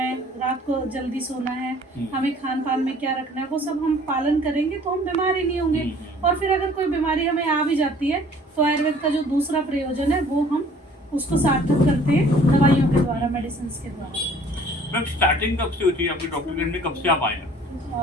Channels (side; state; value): both; normal; correlation 0.53